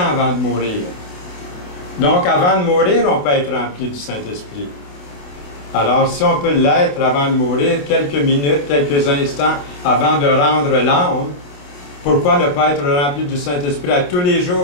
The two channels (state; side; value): late; right; 28 ms